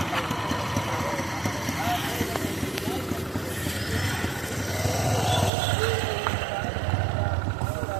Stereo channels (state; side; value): drops out; left; at 5.5 s